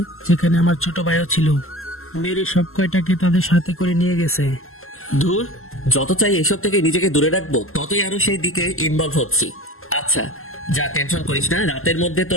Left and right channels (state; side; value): late; right; 0.62 ms